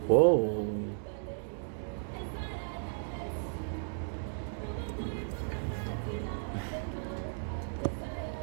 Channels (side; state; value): left; silent; digital silence